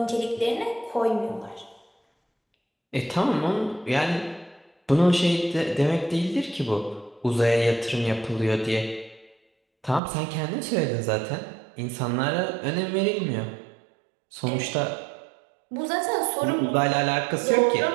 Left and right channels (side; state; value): left; drops out; at 10.0 s